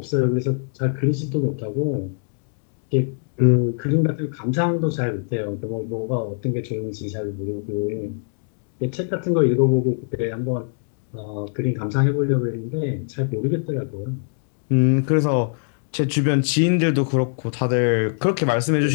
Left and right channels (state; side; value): silent; right; digital silence